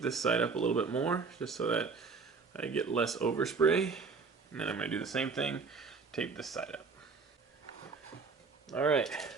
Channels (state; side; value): quieter; left; 4.8 dB